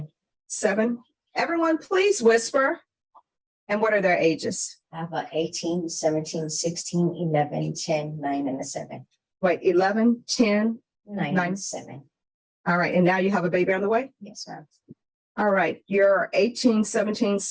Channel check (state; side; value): identical; both; correlation 1.00